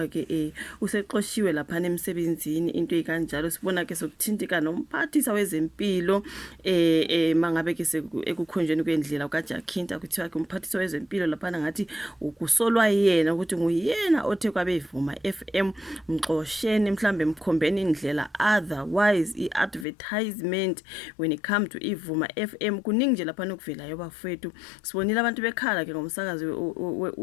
ke useqoshiwe lapha emsebenzini into ekanjalo. Sibona ke sokuthintika nomphathisa wezempilo mangabe ke ekukhonjweni kwendlela kaJakhinta kuthiwa ke umphathisa wezempilo lapha ngathi ukusolwa yena ukuthi nguyena othe kwabevuma FM mxosheni mhlambe mkhombeni indlela, otherwise iadvertisement when it come to ivuma FM kuningi nje lapha nokuvelayo bafethu. Sibonile abantu bekhala ke ngomsakazi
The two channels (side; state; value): right; drops out; at 19.9 s